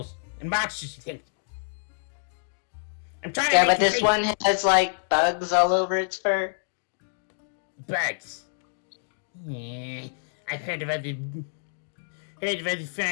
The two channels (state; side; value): silent; right; digital silence